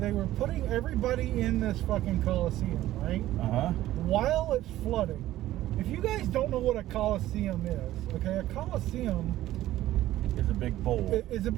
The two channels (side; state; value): left; quieter; 14.6 dB